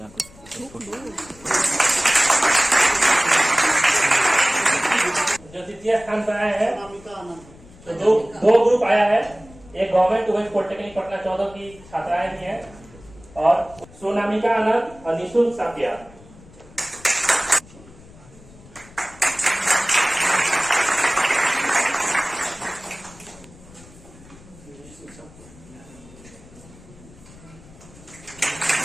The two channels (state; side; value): noise; left; rumble, 22 dB below the sound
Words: कुछ। जो द्वितीय स्थान पर आए हैं अनामिका आनंद। तो दो ग्रुप आया है। एक गवर्नमेंट वुमेन पॉलिटेक्निक पटना 14 की छात्राएं भी हैं और सोनामिका आनंद और निशुल्क सापिया।